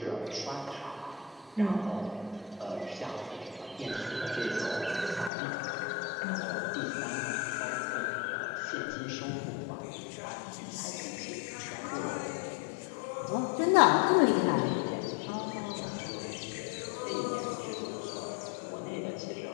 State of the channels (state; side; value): drops out; right; at 5.3 s